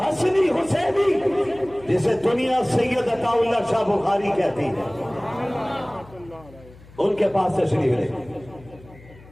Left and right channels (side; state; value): left; noise; hum, 22 dB below the sound